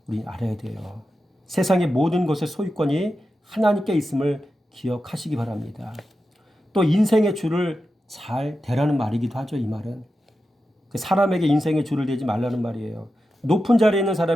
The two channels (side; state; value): both; normal; correlation 0.91